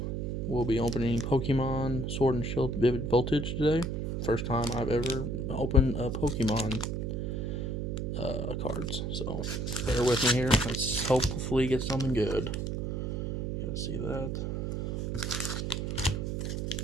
We'll be opening Pokemon Sword and Shield Vivid Voltage today. First time I've ever opened a Pokemon cards, so bear with me here. Let's hopefully get something good. You guys see that?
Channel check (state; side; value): noise; right; hum, 2 dB below the sound